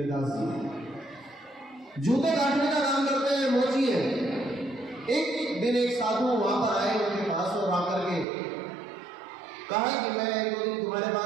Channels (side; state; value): left; drops out; at 8.2 s